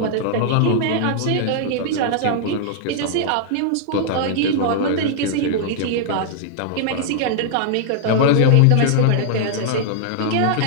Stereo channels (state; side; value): different; both; correlation -0.01